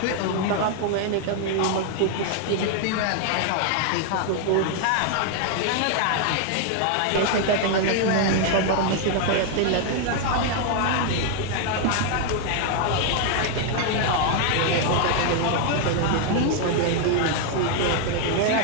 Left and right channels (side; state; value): both; different; correlation 0.00